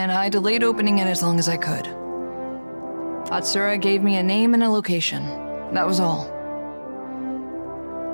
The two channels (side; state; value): both; inverted; correlation -1.00